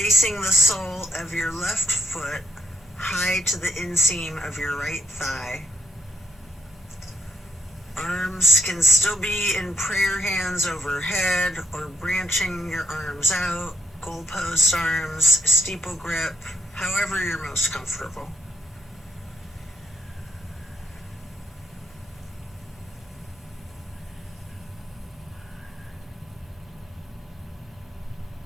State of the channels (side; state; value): both; normal; correlation 0.77